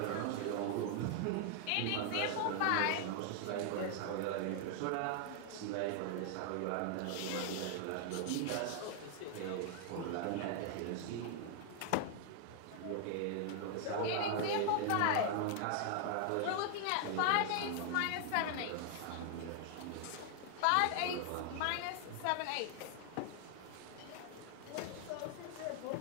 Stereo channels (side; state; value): both; different; correlation 0.00